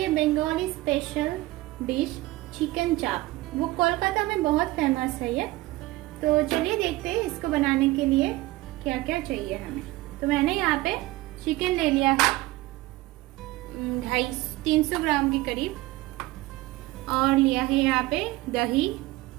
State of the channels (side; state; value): left; quieter; 19.1 dB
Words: बंगाली स्पेशल डिश चिकन चाप। वो कोलकाता में बहुत फेमस है ये। तो चलिए देखते हैं इसको बनाने के लिए क्या क्या चाहिए हमें। तो मैंने यहाँ पे चिकन ले लिया है 300 ग्राम के करीब, और लिया है यहाँ पे दही।